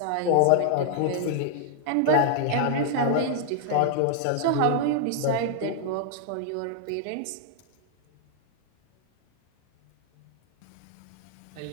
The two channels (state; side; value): different; both; correlation -0.01